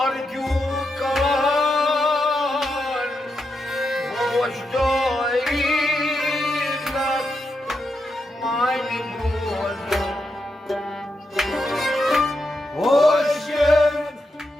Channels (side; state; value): both; normal; correlation 0.85